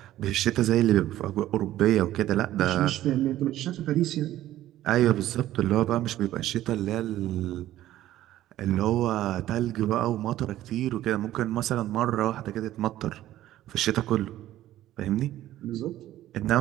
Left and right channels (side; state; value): left; quieter; 13.9 dB